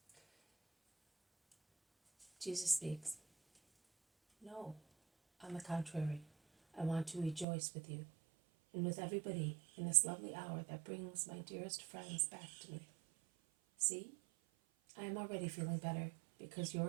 Jesus speaks. No, on the contrary, I want to rejoice with you, and with everybody in this lovely hour that brings my dearest friends back to me. See, I am already feeling better, because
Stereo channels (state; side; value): drops out; left; at 7.5 s